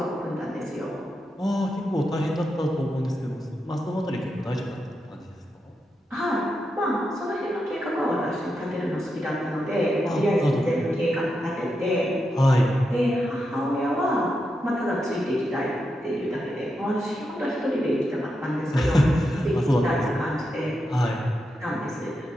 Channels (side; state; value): both; normal; correlation 0.86